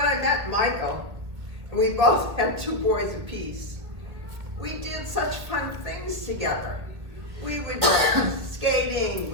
I met Michael, and we both had two boys apiece, we did such fun things together. We would go skating,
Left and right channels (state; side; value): late; left; 1.6 ms